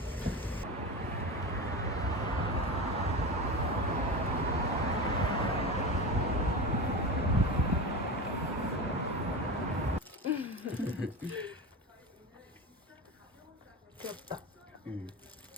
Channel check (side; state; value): both; normal; correlation 0.25